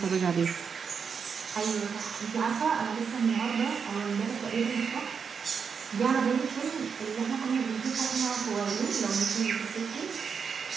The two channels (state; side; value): quieter; left; 6.2 dB